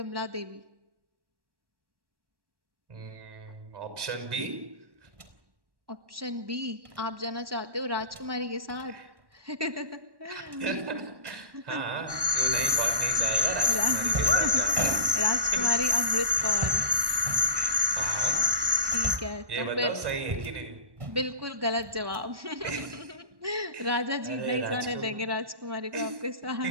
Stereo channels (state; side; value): late; left; 1.1 ms